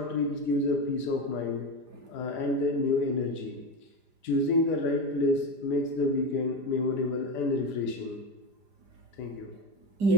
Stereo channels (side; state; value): left; late; 5.0 ms